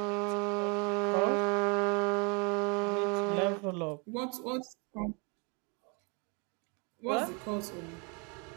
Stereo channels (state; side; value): quieter; left; 33.4 dB